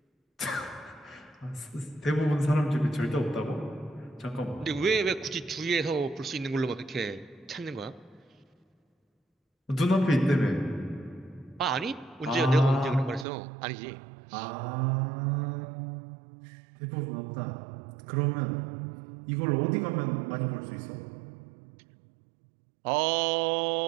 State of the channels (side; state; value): left; drops out; at 13.2 s